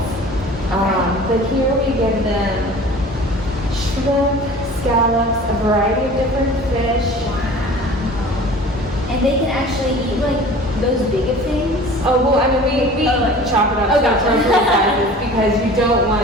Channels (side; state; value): both; normal; correlation 0.43